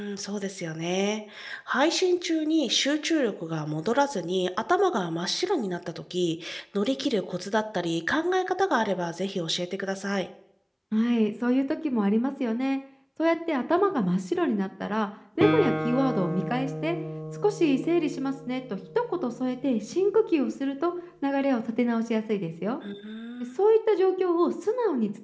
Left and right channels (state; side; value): identical; both; correlation 1.00